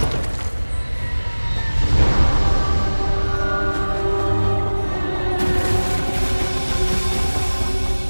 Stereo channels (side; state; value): both; inverted; correlation -1.00